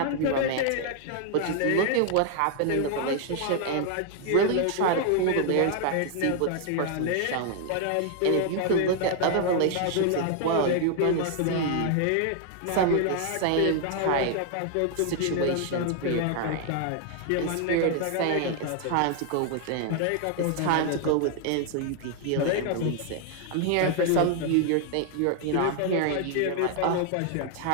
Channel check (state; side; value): different; both; correlation 0.00